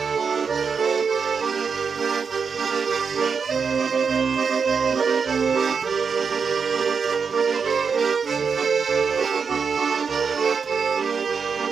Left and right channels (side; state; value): left; quieter; 5.8 dB